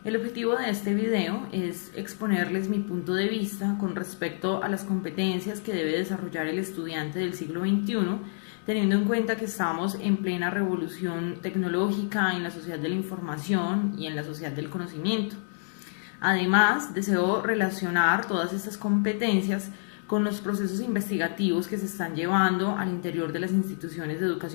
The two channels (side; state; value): right; silent; digital silence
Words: El objetivo de este video es exponerles mi punto de vista con respecto a las competencias que debe desarrollar el estudiante del siglo XXI, teniendo en cuenta que estamos en plena revolución tecnológica en la sociedad de la información y en la sociedad del conocimiento. Además, deseo relacionar todas estas competencias con los procesos investigativos que se están llevando al interior de las instituciones de